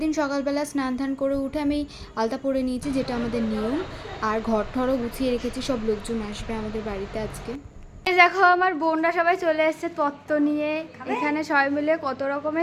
দিন সকালবেলা স্নান ধান করে উঠে আমি আলতা পরে নিয়েছি, যেটা আমাদের নিয়ম। আর ঘর ঠরও গুছিয়ে রেখেছি, সব লোকজন আসবে আমাদের বাড়িতে আজকে। দেখো আমার বোনরা সবাই চলে এসছে তত্ত্ব নিয়ে। এখানে সবাই মিলে কত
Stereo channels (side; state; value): both; identical; correlation 1.00